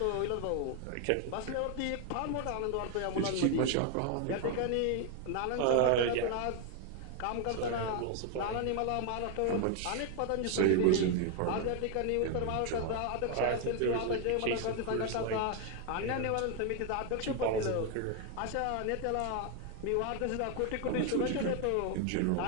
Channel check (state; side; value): different; both; correlation 0.01